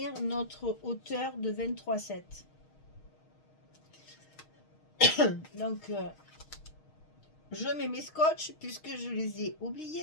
notre hauteur de 23,7. Donc, je mets mes scotch puisque je les ai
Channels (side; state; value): right; late; 6.4 ms